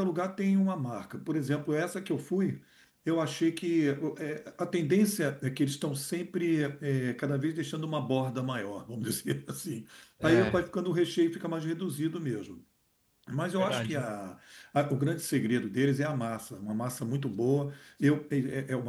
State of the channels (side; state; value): both; identical; correlation 1.00